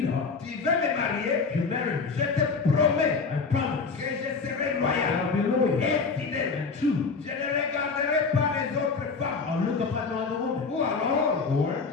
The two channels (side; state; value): right; quieter; 4.7 dB